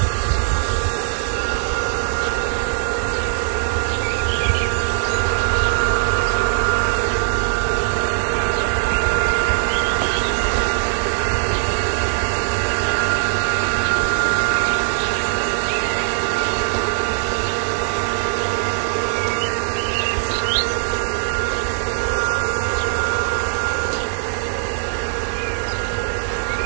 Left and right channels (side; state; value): left; silent; digital silence